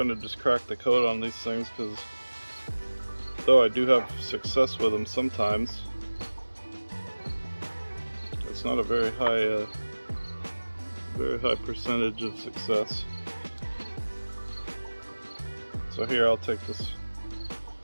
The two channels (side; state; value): both; inverted; correlation -1.00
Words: just crack the coat on these things, because though I do have success with them sometimes, it's not a very high percentage of success. So here I'll take this,